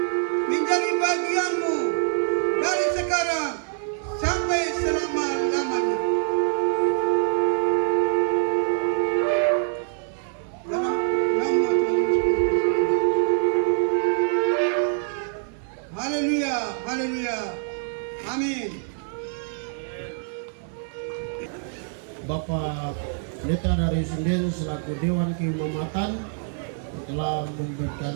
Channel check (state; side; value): silent; left; 62 dB below the other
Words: menjadi bagianmu dari sekarang sampai selama-lamanya. Dalam nama Tuhan Yesus Kristus. Haleluya, haleluya. Amin. Bapak Pendeta dari Sinden selaku Dewan Keimamatan telah